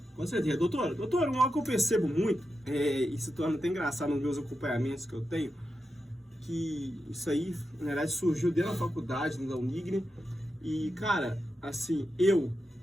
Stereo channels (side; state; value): both; normal; correlation 0.88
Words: Com certeza. Doutora, algo que eu percebo muito, e se torna até engraçado nos meus acompanhamentos que eu tenho, que isso aí, na verdade, surgiu dentro da faculdade, da Unigre. E, cara, assim,